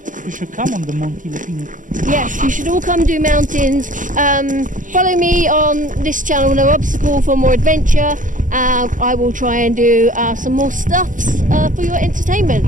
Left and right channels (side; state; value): left; late; 0.38 ms